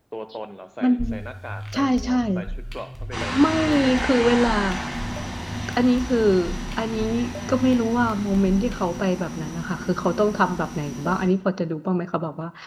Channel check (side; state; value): both; identical; correlation 1.00